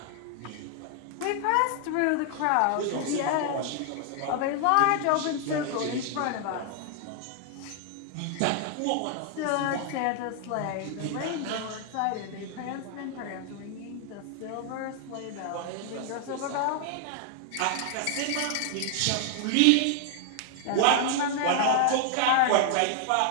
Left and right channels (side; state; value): both; different; correlation 0.00